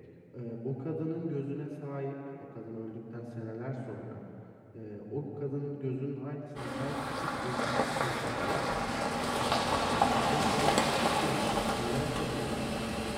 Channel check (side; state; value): both; identical; correlation 1.00